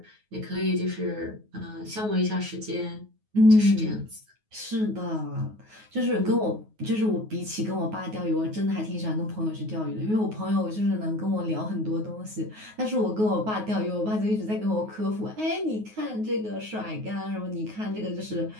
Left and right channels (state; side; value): late; left; 9.4 ms